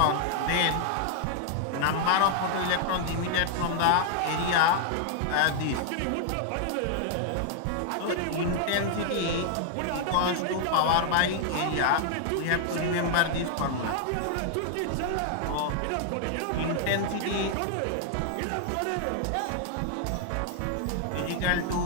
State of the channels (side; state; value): both; different; correlation 0.00